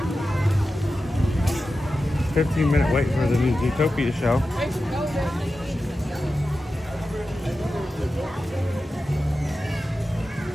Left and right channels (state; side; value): normal; both; correlation 0.92